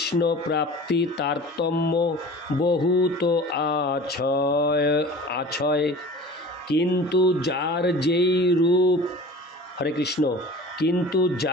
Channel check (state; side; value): normal; both; correlation 0.40